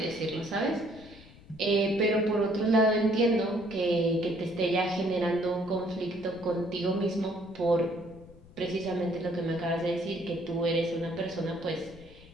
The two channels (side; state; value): left; noise; rumble, 21 dB below the sound